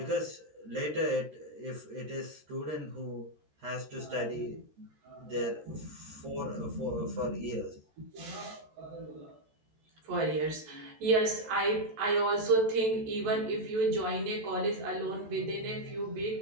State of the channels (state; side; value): late; left; 13 ms